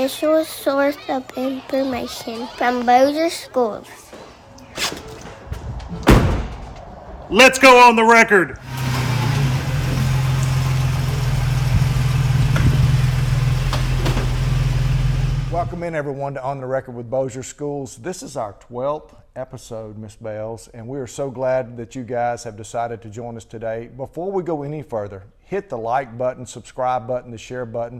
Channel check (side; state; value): both; identical; correlation 1.00